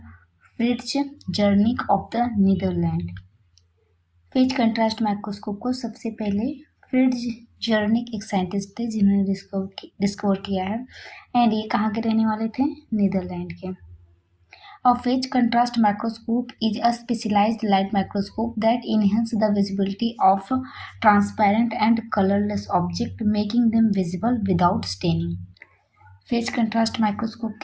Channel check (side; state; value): both; identical; correlation 1.00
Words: Frits Zernike of the Netherland. Phase contrast microscope को सबसे पहले फ्रिट्ज जर्निक एक साइंटिस्ट थे जिन्होंने डिस्कवर किया है, एंड ये कहाँ के रहने वाले थे, नीदरलैंड के। A phase contrast microscope is a specialized light microscope that enhances the visibility of transparent and colorless objects, making them visible without staining. Phase contrast microscope